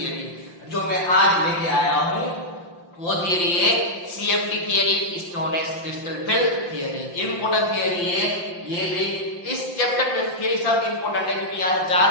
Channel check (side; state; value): right; late; 5.8 ms